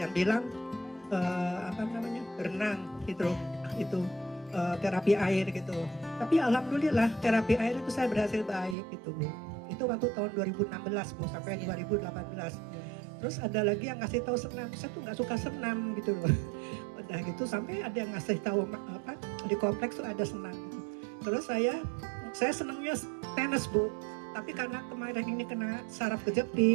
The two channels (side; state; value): left; drops out; at 8.8 s